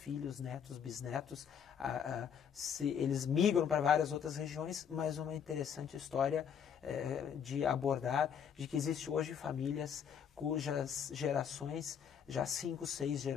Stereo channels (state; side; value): quieter; right; 7.8 dB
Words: netos, bisnetos, eles migram para várias outras regiões, mas uma interessante história de abordar, de que existe hoje famílias cujas gerações, já 5, 6